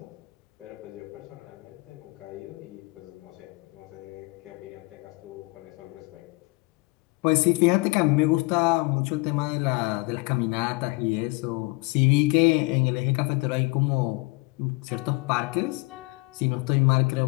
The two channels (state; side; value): quieter; right; 26.4 dB